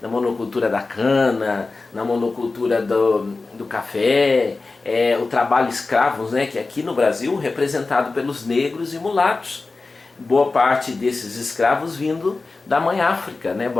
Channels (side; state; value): right; quieter; 3.7 dB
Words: Na monocultura da cana, na monocultura do café, o trabalho escravo, né? Que aqui no Brasil representado pelos negros e mulatos. Boa parte desses escravos vindo da mãe África, né?